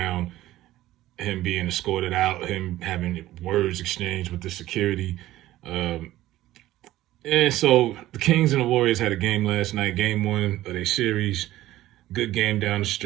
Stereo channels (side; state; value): left; quieter; 15.3 dB